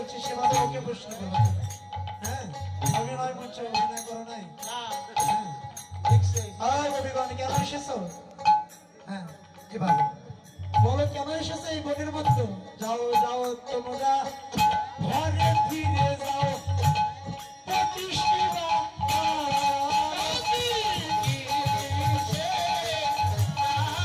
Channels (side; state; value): both; identical; correlation 1.00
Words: সেভাবে ওকে প্রশ্ন করো। হ্যাঁ অভিনয় করছো, অভিনয় করো নাই? কবিগণ কেন এসেছো? হ্যাঁ এভাবে বলো কেন এসেছো এই বনের মধ্যে? যাও যাও তোমরা ঘরে ফিরে যাও,